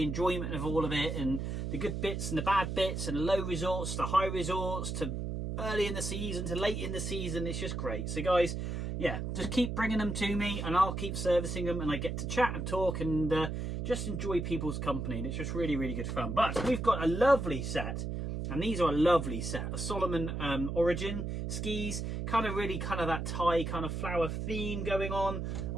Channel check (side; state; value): right; noise; hum, 3 dB below the sound